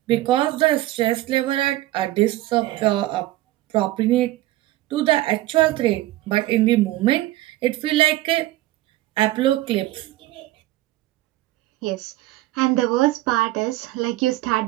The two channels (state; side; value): quieter; left; 16.7 dB